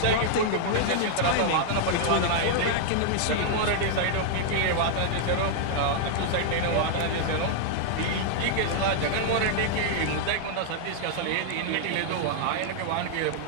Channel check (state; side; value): different; both; correlation -0.01